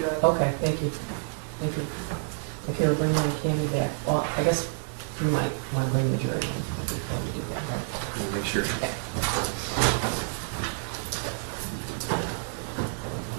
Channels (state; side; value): silent; left; 59 dB below the other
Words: okay, thank you. Thank you. If you're bringing Candy back, well, I guess we might want to bring the jury in before we do that, right? Make sure.